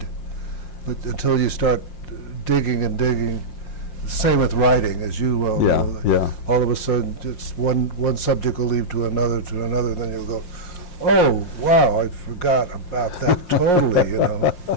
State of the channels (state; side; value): late; right; 5.6 ms